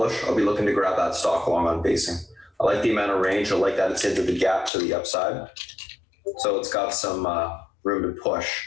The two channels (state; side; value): drops out; right; at 4.7 s